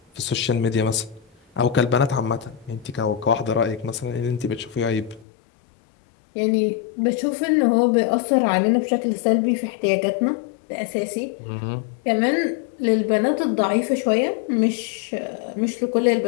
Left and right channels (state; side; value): drops out; right; at 5.2 s